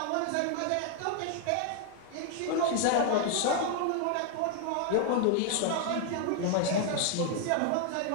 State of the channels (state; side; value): different; both; correlation 0.00